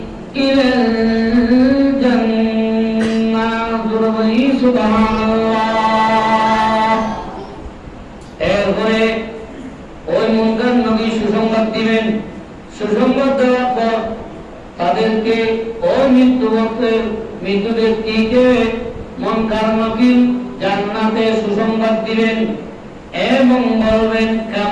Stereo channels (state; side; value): identical; both; correlation 1.00